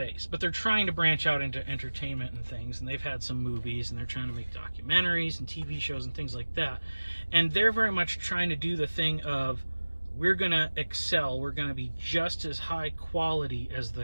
but they're trying to branch out into entertainment and things, and they've had some movies, and they're trying to make documentaries and TV shows and things like that. And they're very much trying to do the thing of, we're going to excel, we're going to be just as high quality as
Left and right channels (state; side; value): inverted; both; correlation -1.00